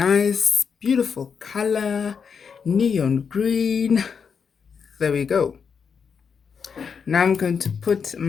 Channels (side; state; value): right; quieter; 6.3 dB